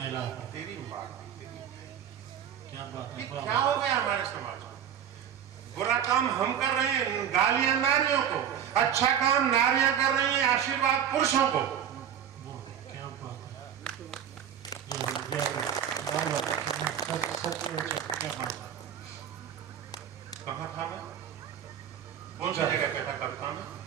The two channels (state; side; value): quieter; left; 9.1 dB